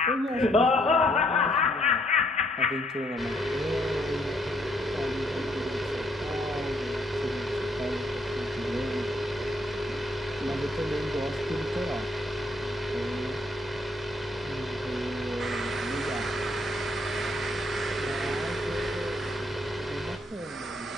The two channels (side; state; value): both; normal; correlation 0.70